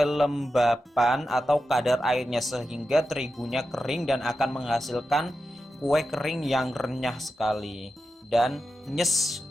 atau kadar airnya sehingga terigunya kering dan akan menghasilkan kue kering yang renyah sekali dan nyes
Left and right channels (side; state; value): both; normal; correlation 0.90